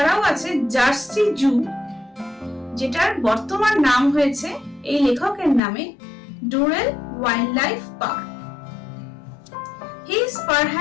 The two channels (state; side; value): drops out; right; at 5.6 s